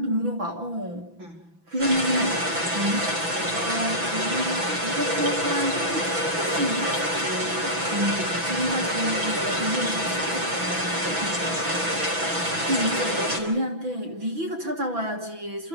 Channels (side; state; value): left; late; 6.0 ms